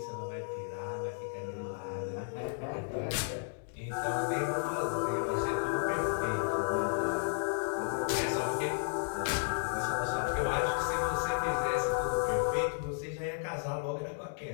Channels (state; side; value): silent; right; digital silence